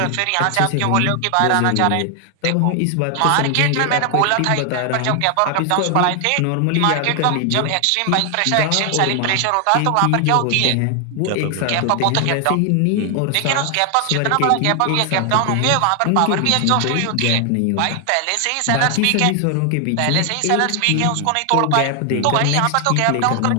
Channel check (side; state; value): both; different; correlation 0.00